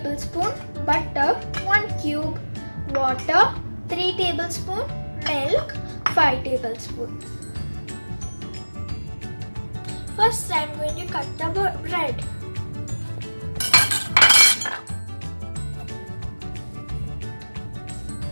butter 1 cube, water 3 tablespoons, milk 5 tablespoons. First I am going to cut the bread.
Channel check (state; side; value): inverted; both; correlation -1.00